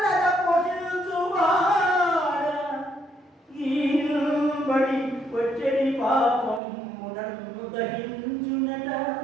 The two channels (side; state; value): left; drops out; at 6.6 s